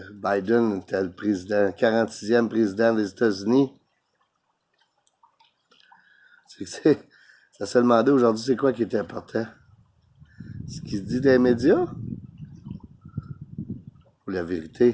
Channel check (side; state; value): both; identical; correlation 1.00